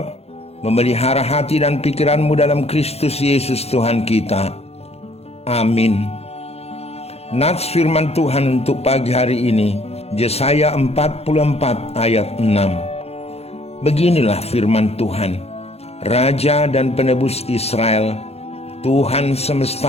memelihara hati dan pikiranmu dalam Kristus Yesus Tuhan kita. Amin. Nats firman Tuhan untuk pagi hari ini, Yesaya 44 ayat 6. Beginilah firman Tuhan, Raja dan Penebus Israel, Tuhan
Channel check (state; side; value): late; right; 0.30 ms